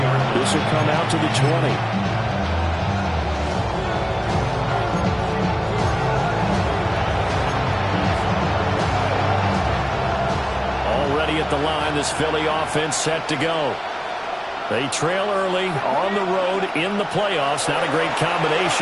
this will come out to the 20. Already at the line, this Philly offense set to go. They trail early on the road in the playoffs. Not a great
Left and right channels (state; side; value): identical; both; correlation 1.00